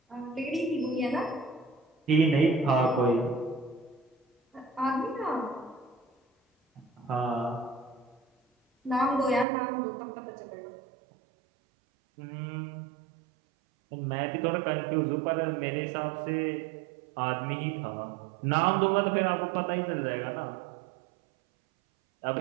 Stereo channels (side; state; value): left; drops out; at 9.5 s